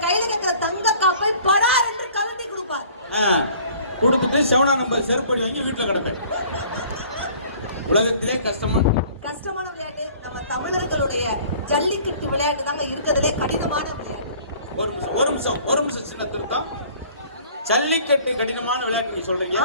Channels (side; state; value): both; inverted; correlation -0.52